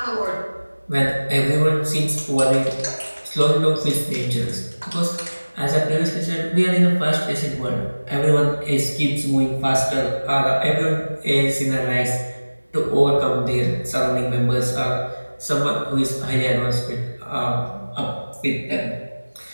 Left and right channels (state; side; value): inverted; both; correlation -1.00